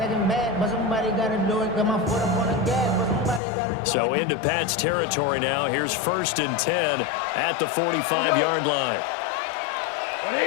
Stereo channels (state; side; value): drops out; right; at 3.4 s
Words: So into Pat's territory now. Here's 1st and 10 at the 45-yard line.